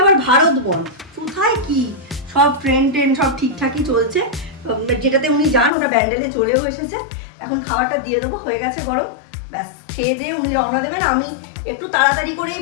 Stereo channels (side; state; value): right; drops out; at 5.7 s